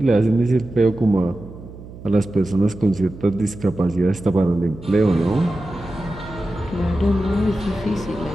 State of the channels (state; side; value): noise; right; hum, 16 dB below the sound